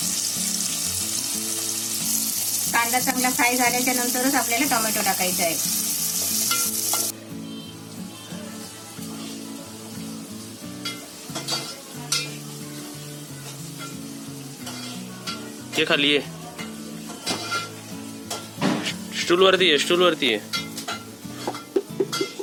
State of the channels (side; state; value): both; identical; correlation 1.00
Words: कांदा चांगला फ्राय झाल्याच्या नंतरच आपल्याला टोमॅटो टाकायचा आहे. ये खाली ये, स्टूल वरती आहे, स्टूल वरती आहे.